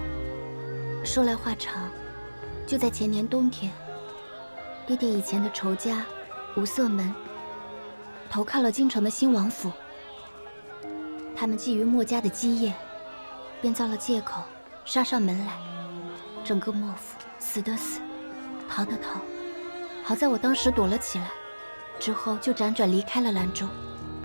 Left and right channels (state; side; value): inverted; both; correlation -1.00